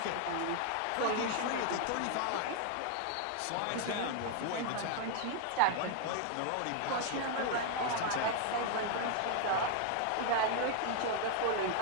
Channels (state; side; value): different; both; correlation 0.00